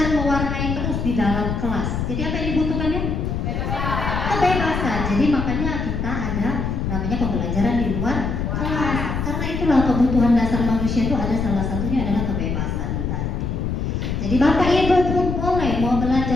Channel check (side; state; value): left; noise; rumble, 2 dB below the sound